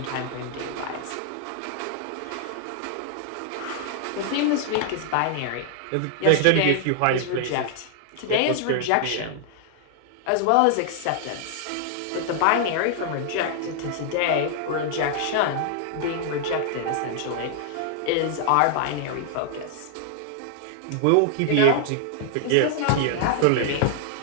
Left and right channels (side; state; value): both; different; correlation 0.00